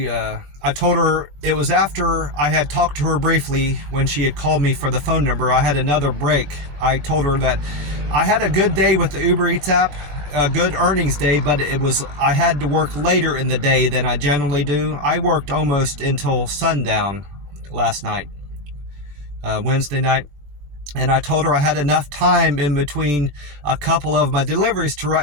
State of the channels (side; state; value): left; late; 20 ms